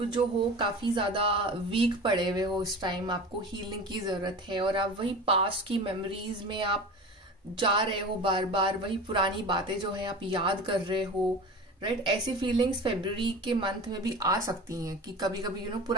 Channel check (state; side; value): normal; both; correlation 0.34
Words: जो हो काफी ज्यादा वीक पड़े हुए हो इस टाइम, आपको हीलिंग की जरूरत है, और आप वही पास्ट की मेमोरीज में आप जा रहे हो, बार बार वही पुरानी बातें जो है आप याद कर रहे हो, राइट। ऐसी फीलिंग्स फरवरी के मंथ में भी आ सकती हैं कि कभी कभी यू नो